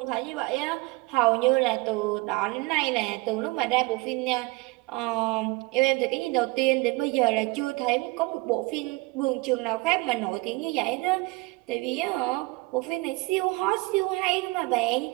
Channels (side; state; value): left; quieter; 24.1 dB